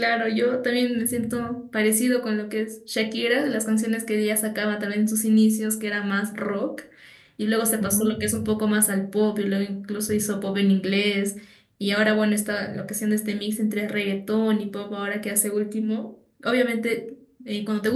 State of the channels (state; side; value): identical; both; correlation 1.00